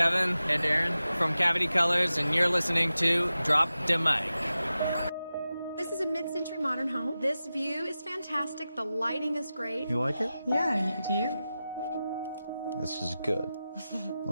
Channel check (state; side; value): inverted; both; correlation -0.93